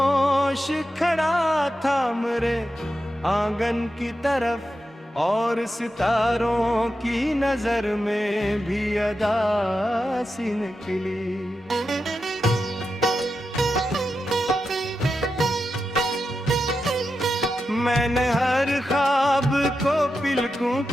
खड़ा था मेरे आंगन की तरफ, और सितारों की नजर में भी अदा सी निकली। मैंने हर ख्वाब को पिलकों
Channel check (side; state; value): both; normal; correlation 0.89